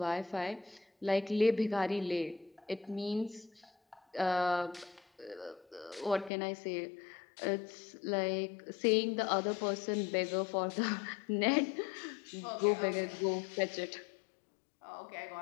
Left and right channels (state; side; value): drops out; right; at 6.3 s